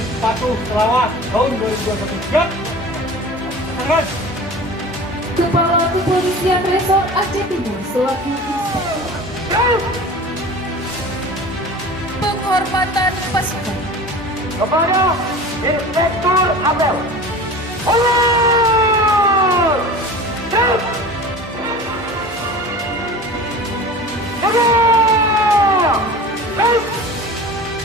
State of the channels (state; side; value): normal; both; correlation 0.37